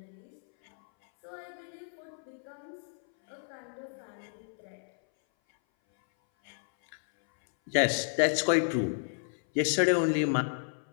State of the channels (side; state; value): right; silent; 57 dB below the other